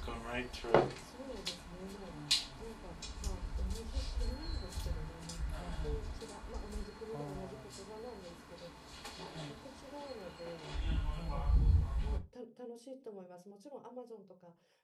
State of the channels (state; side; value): identical; both; correlation 1.00